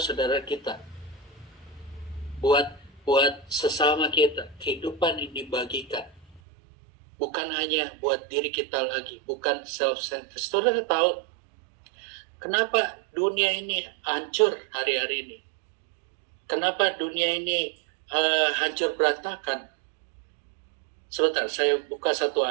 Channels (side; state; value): left; drops out; at 6.4 s